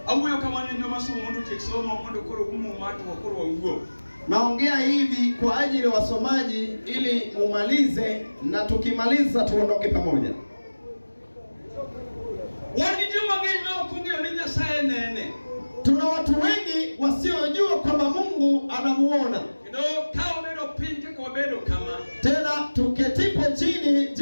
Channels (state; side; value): inverted; both; correlation -1.00